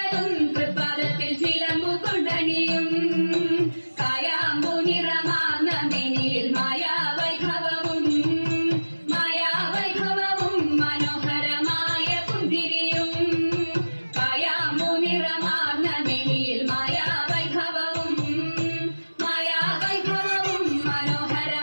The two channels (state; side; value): inverted; both; correlation -1.00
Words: തൃപ്പാദത്തിൽ ചിലമ്പു കൊണ്ടണിയും കായാമ്പു നിറമാർന്ന മെനിയിൽ മായാവൈഭവവും മനോഹരമായ പുന്തിരിയും കായാമ്പു നിറമാർന്ന മെനിയിൽ മായാവൈഭവവും